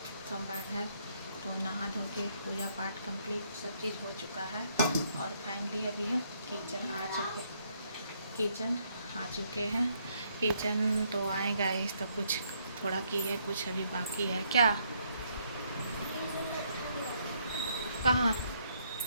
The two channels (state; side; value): inverted; both; correlation -0.71